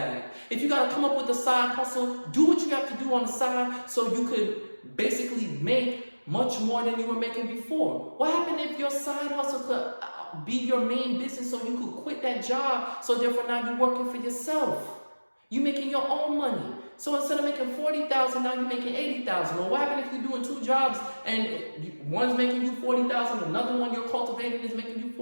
If you got to come up with a side hustle, do what you have to do on the side so you could basically make much more than you were making before. What happened if your side hustle could be your main business, so you could quit that job, so therefore now you're working for yourself? You're making your own money. So instead of making $40,000, now you're making $80,000. Well, what happens if you're doing 2 jobs and one's making you $40,000, another one you're cultivating is making you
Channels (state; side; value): inverted; both; correlation -1.00